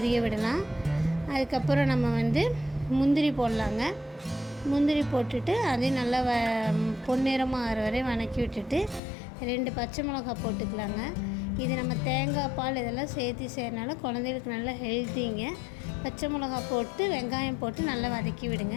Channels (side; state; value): right; drops out; at 9.0 s